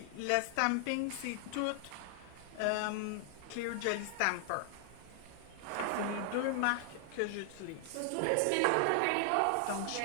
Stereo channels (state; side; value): different; both; correlation 0.00